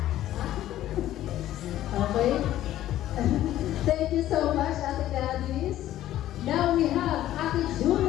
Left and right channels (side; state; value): right; quieter; 13.3 dB